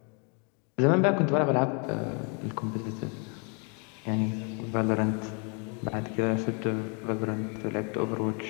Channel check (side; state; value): right; quieter; 36.4 dB